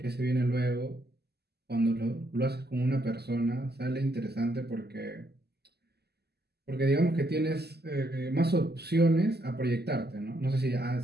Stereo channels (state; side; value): late; left; 0.47 ms